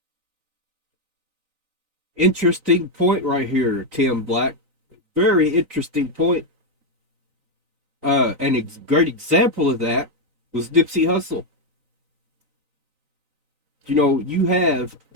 Interesting point right here, Tim Black. Very interesting point. And a great example of that was Nipsey Hussle. You know,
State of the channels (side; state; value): left; late; 3.9 ms